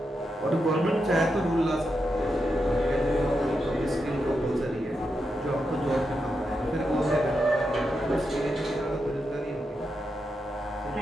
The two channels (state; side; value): normal; both; correlation 0.86